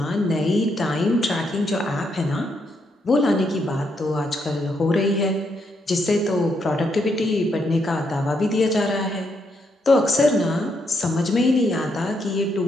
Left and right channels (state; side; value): normal; both; correlation 0.77